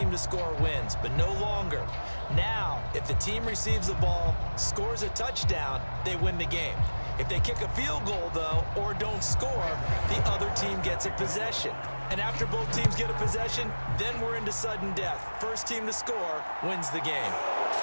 to score wins, but no longer. Now, if the team receives the ball, scores a touchdown, they win the game. If they kick a field goal, though, or don't score, the other team gets a possession. And after both teams get a possession, then we're into sudden death. First team to score wins the game.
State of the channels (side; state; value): both; inverted; correlation -1.00